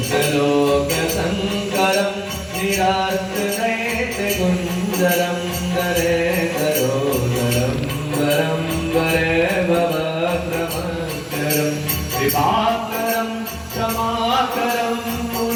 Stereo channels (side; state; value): both; identical; correlation 1.00